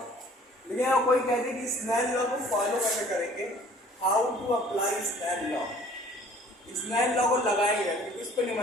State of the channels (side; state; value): both; normal; correlation 0.53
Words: यहाँ कोई कहते हैं कि स्नेल लॉ को फॉलो कैसे करेंगे, how to apply Snell law. Snell law को लगाएंगे, इस पे